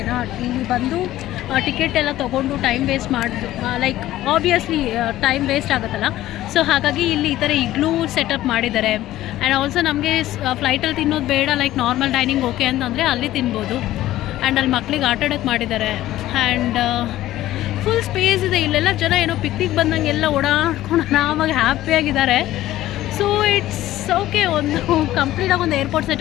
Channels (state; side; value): quieter; right; 14.8 dB